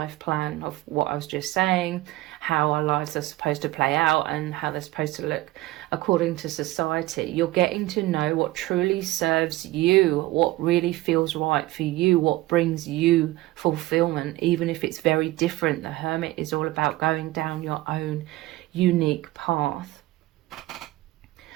plan of what I was just saying, how our lives are supposed to play out and how they're supposed to look according to society. You're getting to know what truly serves you, what really feels right for you, what brings you fulfillment, even if it's very different. The Hermit is all about going down your own unique path.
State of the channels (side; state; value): left; quieter; 18.1 dB